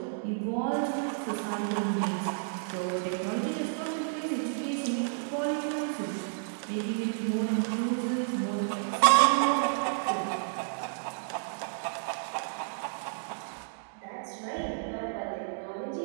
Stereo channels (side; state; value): left; silent; digital silence